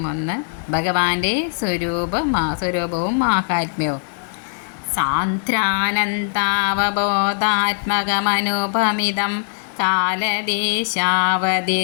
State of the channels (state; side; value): silent; right; digital silence